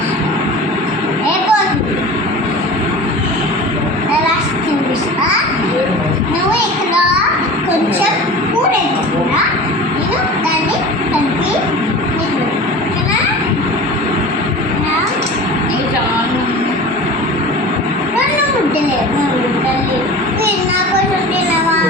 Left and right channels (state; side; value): normal; both; correlation 0.36